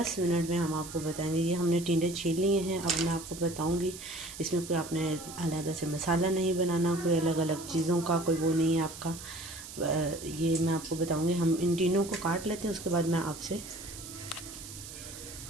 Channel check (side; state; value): right; noise; hiss, 13 dB below the sound